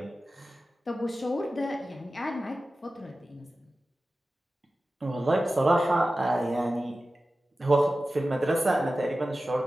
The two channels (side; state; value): both; normal; correlation 0.95